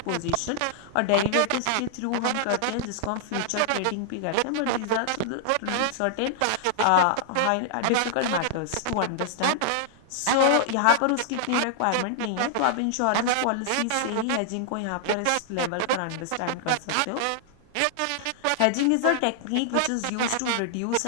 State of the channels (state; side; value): different; both; correlation -0.01